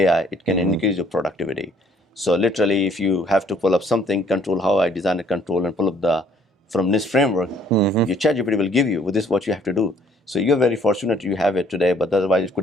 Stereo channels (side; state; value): both; normal; correlation 0.61